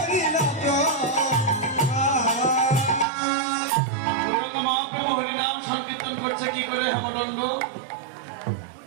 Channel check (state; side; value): drops out; left; at 3.1 s